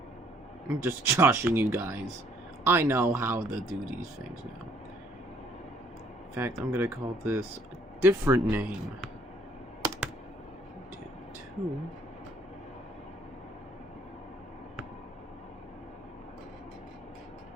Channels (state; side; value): normal; both; correlation 0.62